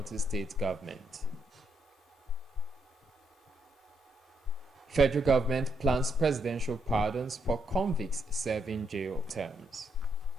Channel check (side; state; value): both; normal; correlation 0.77